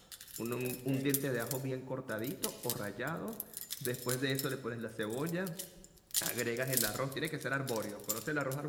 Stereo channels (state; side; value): identical; both; correlation 1.00